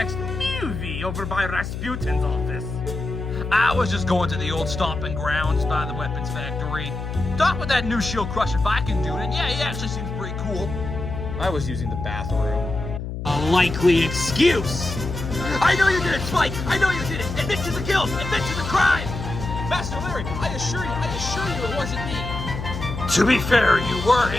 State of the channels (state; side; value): noise; left; hum, 6 dB below the sound